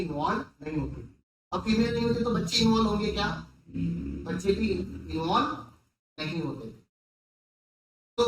नहीं होती। अब फीमेल नहीं होती तो बच्चे इन्वॉल्व होंगे क्या? बच्चे भी इन्वॉल्व नहीं होते। तो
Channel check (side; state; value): both; identical; correlation 1.00